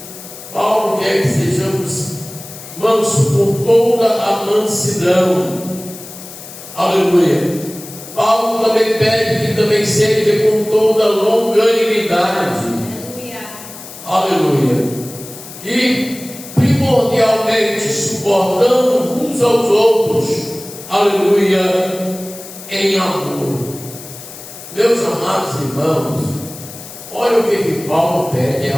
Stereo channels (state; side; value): noise; left; hiss, 15 dB below the sound